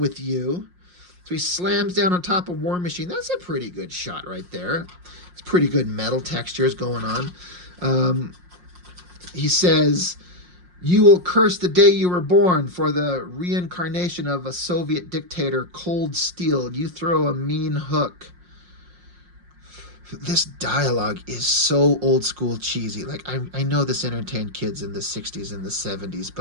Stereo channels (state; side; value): late; left; 5.6 ms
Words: you. So he slams down on top of War Machine. That's a pretty good shot right there. It's pretty good metal textures going on. He says, You will curse the day you were born for the reincarnation of a Soviet dictator, cold steel. You throw a mean hook. This dialogue is so old school cheesy. Like, I know this entertained kids in the 60s and the 70s,